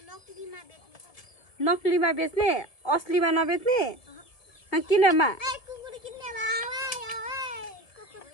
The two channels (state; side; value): late; right; 1.5 ms